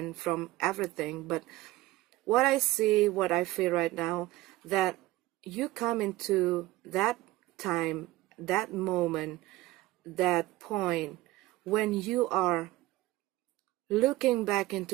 from everything. But what I see, what I feel right now, that you come into that time, that moment, that point when you are looking back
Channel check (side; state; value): left; quieter; 17.9 dB